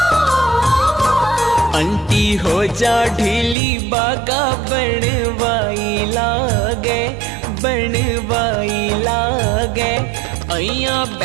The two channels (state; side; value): drops out; left; at 3.6 s